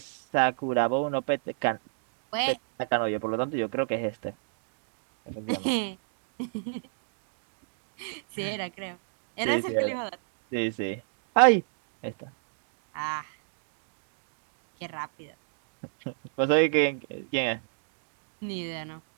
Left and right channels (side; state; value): left; silent; digital silence